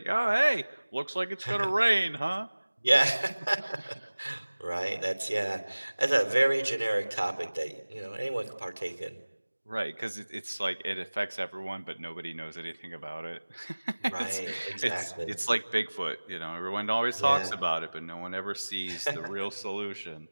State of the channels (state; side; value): inverted; both; correlation -1.00